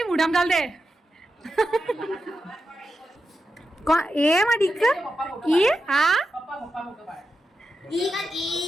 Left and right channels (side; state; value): both; normal; correlation 0.89